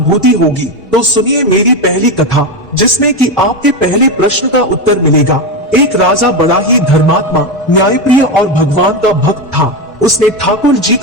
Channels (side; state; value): both; normal; correlation 0.13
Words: होगी। तो सुनिए मेरी पहली कथा, जिसमें कि आपके पहले प्रश्न का उत्तर मिलेगा। एक राजा बड़ा ही धर्मात्मा, न्यायप्रिय और भगवान का भक्त था। उसने ठाकुर जी